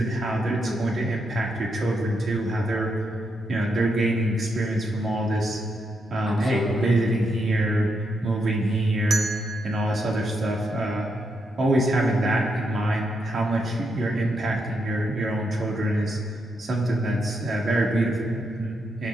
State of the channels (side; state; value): both; normal; correlation 0.81